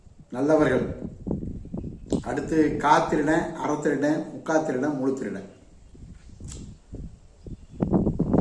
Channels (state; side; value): identical; both; correlation 1.00